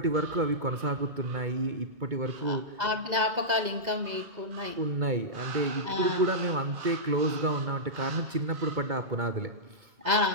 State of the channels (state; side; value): late; left; 2.0 ms